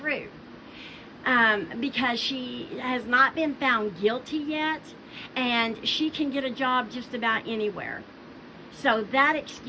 because she has not been found guilty yet, and she can get a job just about anywhere. So that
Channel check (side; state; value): both; identical; correlation 1.00